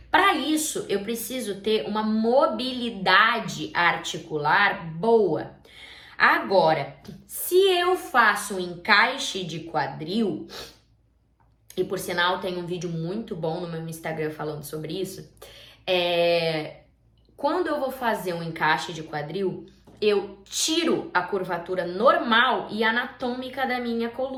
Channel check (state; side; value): identical; both; correlation 1.00